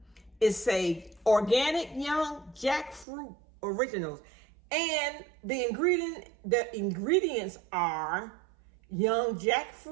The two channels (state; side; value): drops out; left; at 3.1 s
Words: It's a organic young jackfruit originals. And the ingredients are young